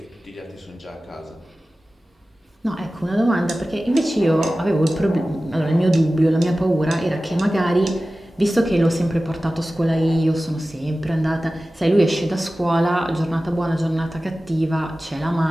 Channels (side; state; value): both; normal; correlation 0.96